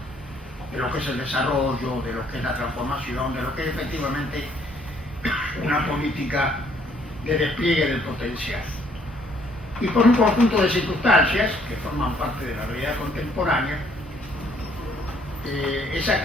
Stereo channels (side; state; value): both; normal; correlation 0.65